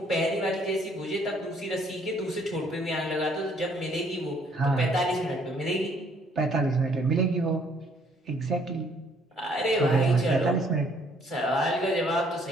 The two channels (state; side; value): normal; both; correlation 0.64